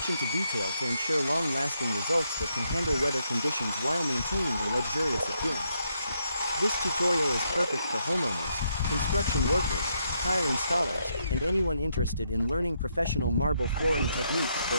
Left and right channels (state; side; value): inverted; both; correlation -0.77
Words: to detail to ensure long-lasting results that can handle weather conditions while maintaining a luxurious appearance. This tutorial is perfect for homeowners, construction workers, tile installers, and anyone interested in learning professional marble flooring techniques for